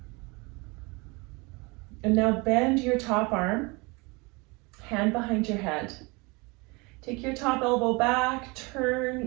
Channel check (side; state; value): left; quieter; 26.9 dB